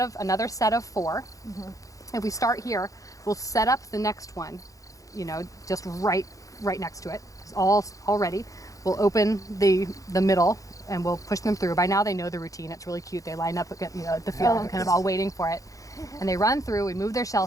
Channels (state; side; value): late; right; 0.16 ms